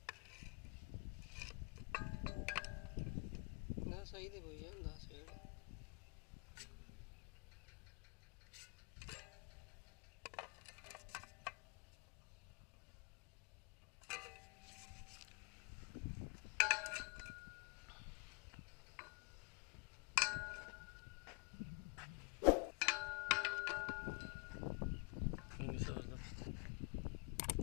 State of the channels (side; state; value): right; quieter; 32.1 dB